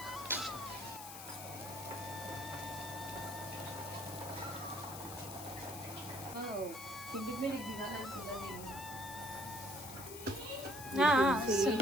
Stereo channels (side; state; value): left; noise; hiss, 11 dB below the sound